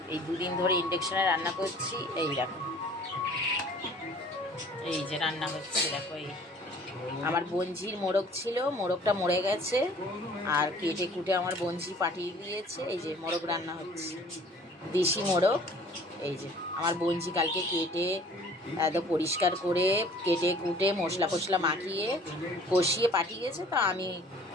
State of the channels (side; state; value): both; normal; correlation 0.52